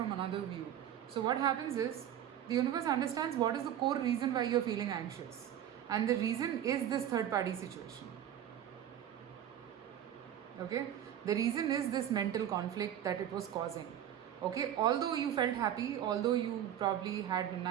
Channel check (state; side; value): quieter; left; 10.6 dB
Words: another view. So what happens is, the universe understands what is the core reason why you're feeling anxious. And the reason is this third party situation. Okay, the reason is this mental conflict that it was causing. Okay, although you felt happy, although you probably had a